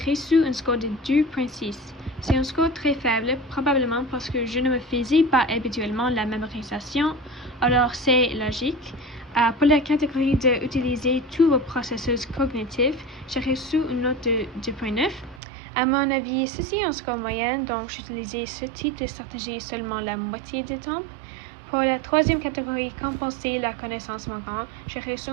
un score de 2.6. C'est un score très faible, probablement parce que je ne me faisais pas habituellement la mémorisation, alors c'est logique. Pour la catégorie de utiliser tous vos processus cognitifs, j'ai reçu une note de 2.9. À mon avis, ceci est un score moyen, donc j'utilisais ce type de stratégie seulement la moitié du temps. Pour la troisième catégorie, compenser la connaissance manquante, j'ai reçu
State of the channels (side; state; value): left; drops out; at 15.4 s